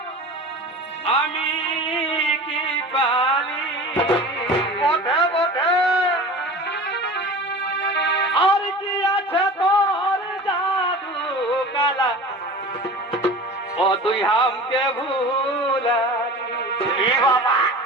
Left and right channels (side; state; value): both; normal; correlation 0.36